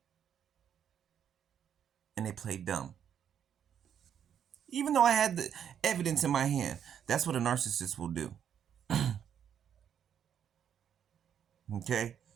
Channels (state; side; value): quieter; left; 8.8 dB